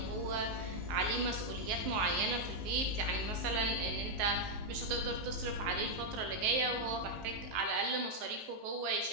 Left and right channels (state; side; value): late; left; 19 ms